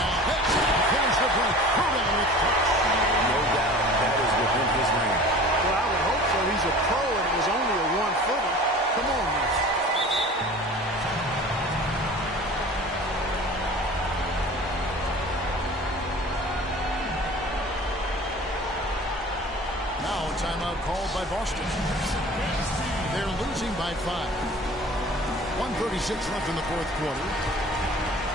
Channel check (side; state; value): both; normal; correlation 0.42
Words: that's how to finish the break. Calderon with touch. No doubt that is within his range. Well, I would hope so. He's a pro and it was only a 1-footer. Come on, man. Timeout called by Boston. They're losing by 5. 1:36 left in the fourth quarter.